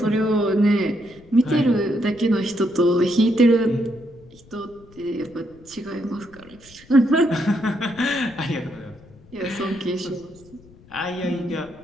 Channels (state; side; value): noise; left; rumble, 25 dB below the sound